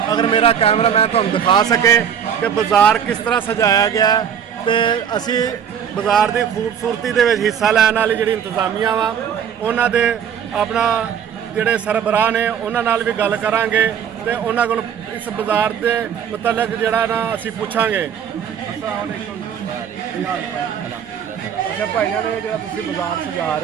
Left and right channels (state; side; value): quieter; left; 8.3 dB